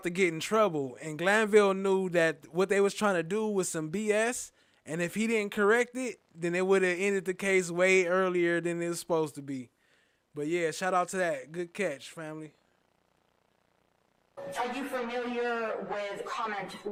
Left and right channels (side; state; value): both; identical; correlation 1.00